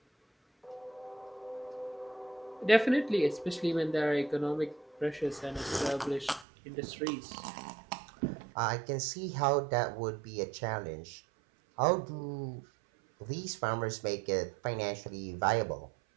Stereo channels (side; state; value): left; drops out; at 6.5 s